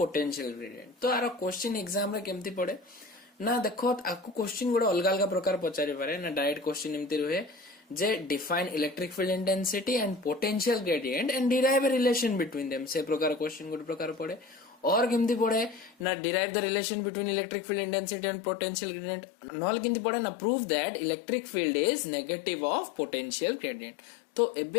ग्रेडियंट। तो आर क्वेश्चन एग्जाम रे केमती पड़े ना देखो आपको क्वेश्चन गोटे अलग अलग प्रकार पचारि पारे ना डायरेक्ट क्वेश्चन एमती रुहे जे define electric field intensity and potential gradient and derive a relation between them से प्रकार क्वेश्चन गोटे प्रकार पड़े और केमती पड़े ना derive the relation between electric field intensity and potential gradient knoll केमती पड़े ना prove that electric field is negative of potential gradient. तो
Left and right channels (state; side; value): drops out; right; at 16.1 s